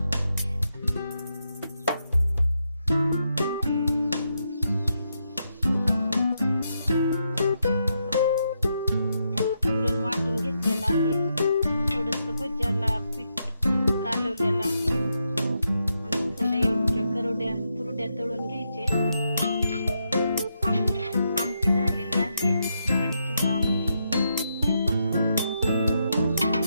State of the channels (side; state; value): both; inverted; correlation -0.82